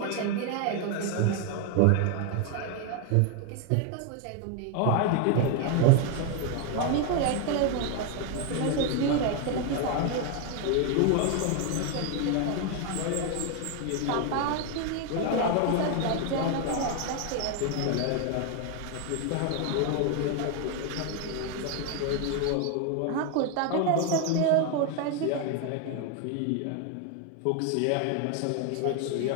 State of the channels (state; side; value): different; both; correlation 0.01